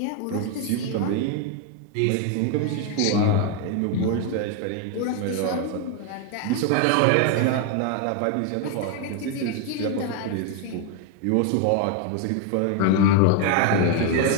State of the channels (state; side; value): different; both; correlation 0.01